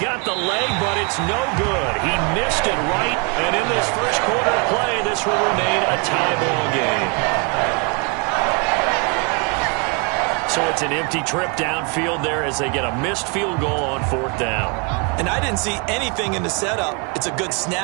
the leg, but it's no good. He missed it right, and in this first quarter of play, this will remain a tie ball game. So it's an empty trip downfield there as they get a missed field goal on 4th down. And I didn't see anything in the setup. It's a good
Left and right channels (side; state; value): left; quieter; 33.4 dB